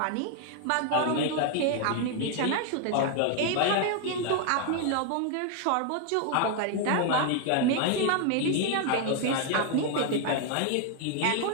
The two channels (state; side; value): different; both; correlation 0.01